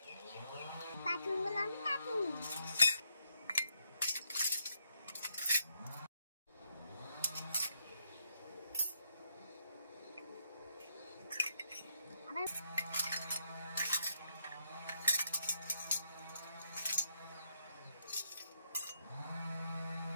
কার্টুনগুলো আমি কাটুন।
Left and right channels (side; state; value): both; inverted; correlation -0.76